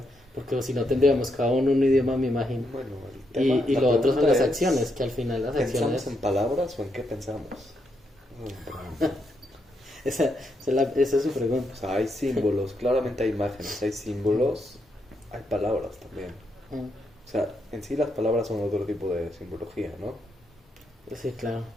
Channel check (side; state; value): both; normal; correlation 0.80